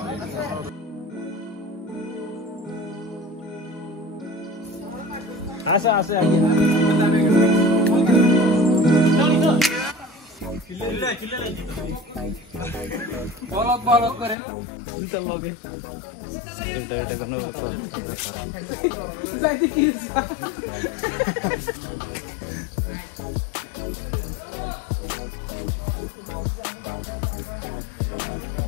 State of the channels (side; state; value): right; drops out; at 14.4 s